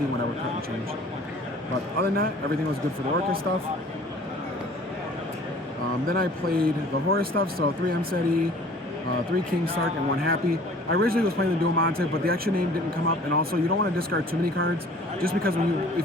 when I would cut and change. But other than that, everything was good for the Orcust stuff. Then I played the Horus stuff, so 3 Mseti, 3 King Sark, and 1 Happy. I originally was playing the Dual Monte, but the extra name didn't come up, and also you don't want to discard too many cards, just because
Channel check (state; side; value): normal; both; correlation 0.49